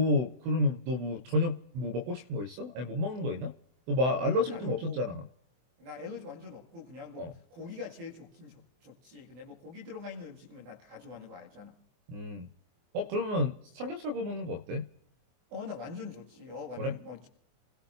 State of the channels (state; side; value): late; left; 24 ms